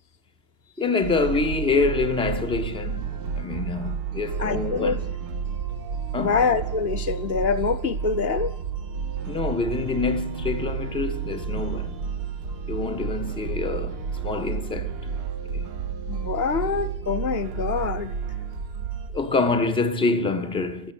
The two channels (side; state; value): left; late; 2.9 ms